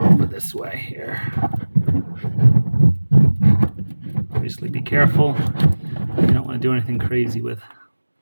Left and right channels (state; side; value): inverted; both; correlation -1.00